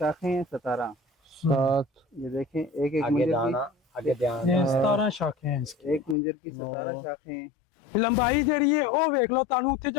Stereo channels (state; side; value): drops out; right; at 6.2 s